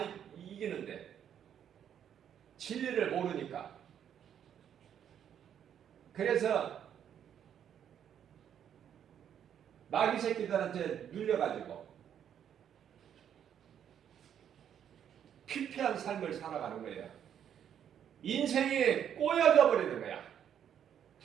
이기는데 진리를 모르니까. 그래서 마귀 새끼들한테 눌려가지고 피폐한 삶을 살아가는 거예요. 인생이 꼬여져 버리는 거야.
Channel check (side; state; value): left; quieter; 9.2 dB